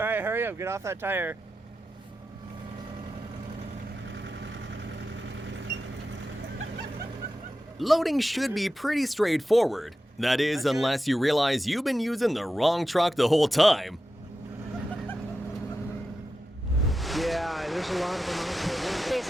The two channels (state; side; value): normal; both; correlation 0.91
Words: right, hurry up, get off that tire. Loading should be pretty straightforward. That is, unless you realize you've been using the wrong truck the whole time. Yeah, there's a lot of them out there.